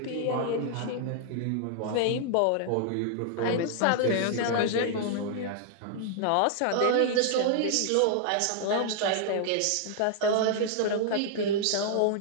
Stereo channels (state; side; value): different; both; correlation -0.01